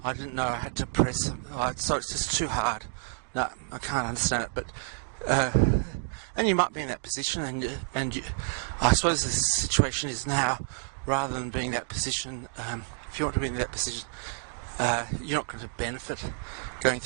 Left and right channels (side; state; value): left; silent; 58 dB below the other